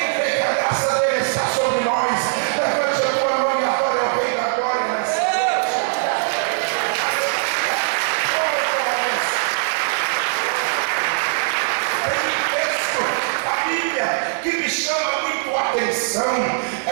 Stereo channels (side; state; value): left; silent; 65 dB below the other